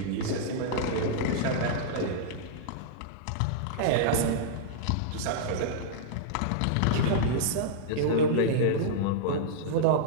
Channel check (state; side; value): different; both; correlation -0.02